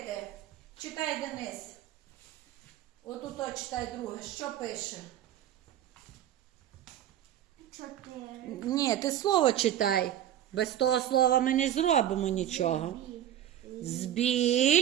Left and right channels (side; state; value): left; quieter; 11.4 dB